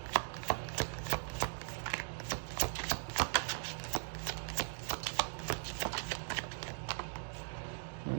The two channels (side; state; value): left; silent; digital silence